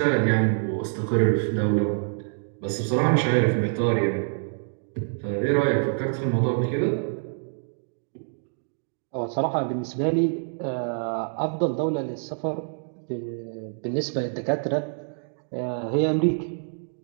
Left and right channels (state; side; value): silent; left; digital silence